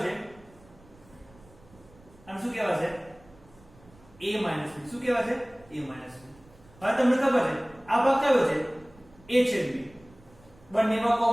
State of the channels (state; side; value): noise; right; rumble, 26 dB below the sound